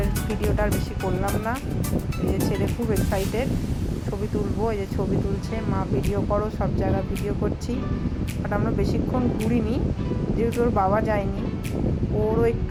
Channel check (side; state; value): both; identical; correlation 1.00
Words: ভিডিওটা আর বেশি করলাম না। এই যে ছেলে খুব এক্সাইটেড, ছবি তুলবো। এই যে ছবি তুলছে, মা ভিডিও করো, সব জায়গা ভিডিও করছি। বাট আমরা বেশিক্ষণ ঘুরিনি, যেহেতু ওর বাবা যায়নি। ওরও